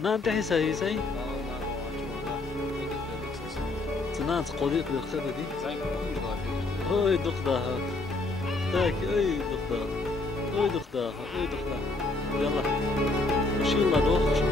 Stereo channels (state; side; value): quieter; right; 3.2 dB